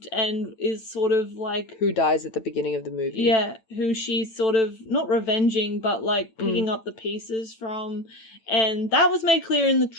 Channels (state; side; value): late; right; 9.0 ms